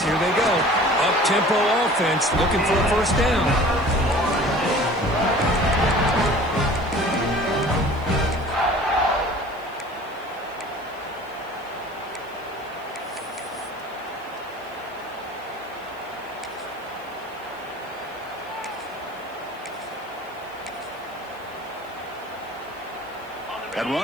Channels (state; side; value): noise; right; hiss, 27 dB below the sound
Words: here they go. Up-tempo offense looking for a 1st down. That